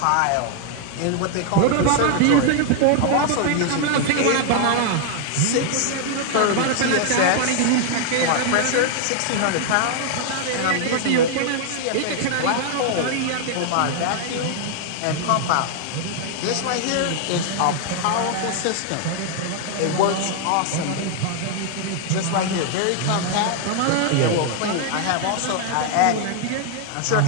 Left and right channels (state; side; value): different; both; correlation 0.00